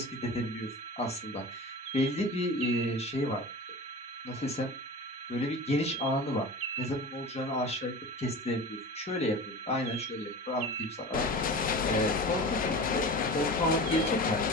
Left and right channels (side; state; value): both; normal; correlation 0.33